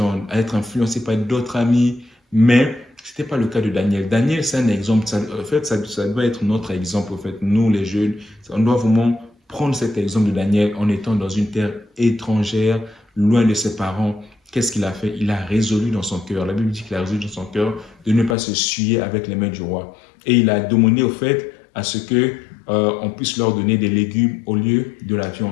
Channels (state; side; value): drops out; right; at 18.4 s